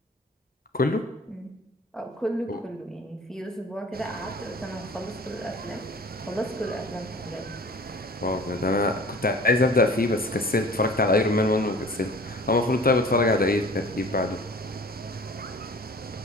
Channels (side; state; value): both; normal; correlation 0.45